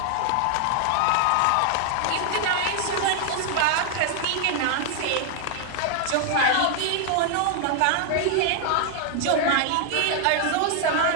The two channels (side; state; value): both; different; correlation 0.00